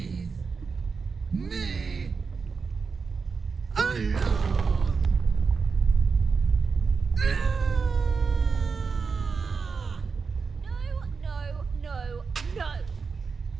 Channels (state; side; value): quieter; left; 5.1 dB